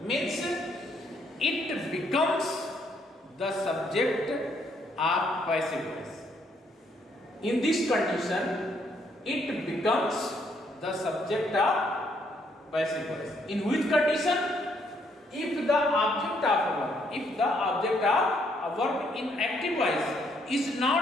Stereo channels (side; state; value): both; normal; correlation 0.71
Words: means it becomes the subject of passive voice. In this condition, it becomes the subject of passive voice. In which condition? If the object of a verb in active voice is